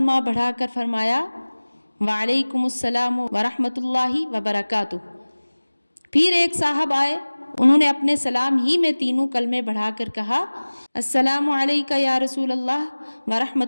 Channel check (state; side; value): inverted; both; correlation -1.00